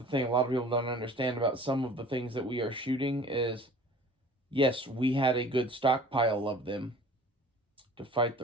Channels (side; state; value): both; normal; correlation 0.47